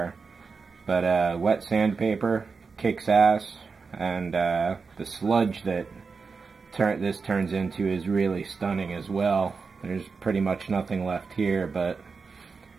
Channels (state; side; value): quieter; left; 4.9 dB